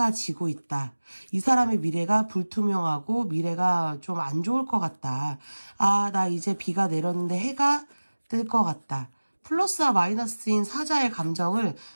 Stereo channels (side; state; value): both; inverted; correlation -1.00